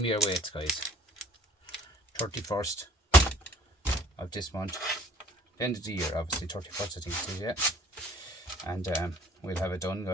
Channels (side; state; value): both; normal; correlation 0.54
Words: me your weights guys. 31st of this month. End of the year obviously, 31st I think it is, yeah. And we'll have it done